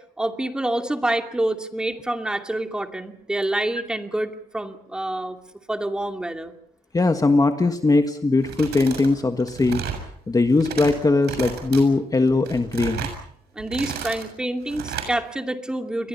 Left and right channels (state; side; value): normal; both; correlation 0.87